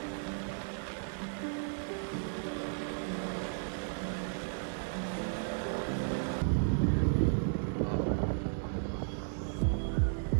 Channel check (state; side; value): silent; left; digital silence